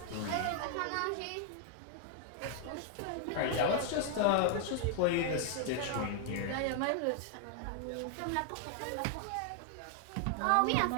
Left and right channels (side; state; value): both; different; correlation 0.00